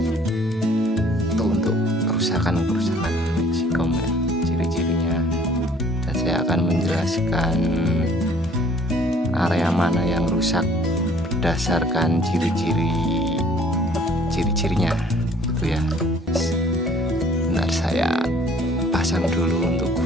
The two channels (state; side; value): normal; both; correlation 0.56